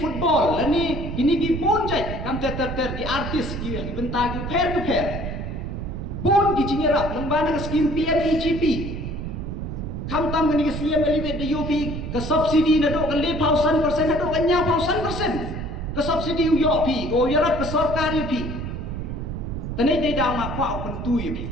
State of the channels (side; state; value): right; noise; rumble, 5 dB below the sound